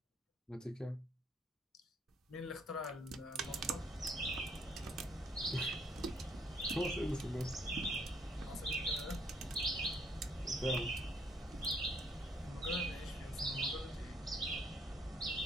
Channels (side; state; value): both; normal; correlation 0.67